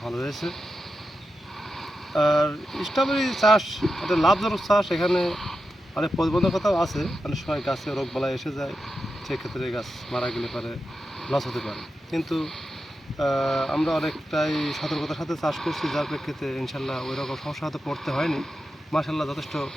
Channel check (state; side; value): normal; both; correlation 0.89